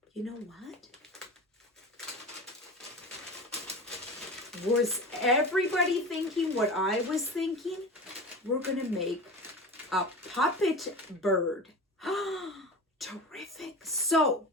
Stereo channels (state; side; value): normal; both; correlation 0.31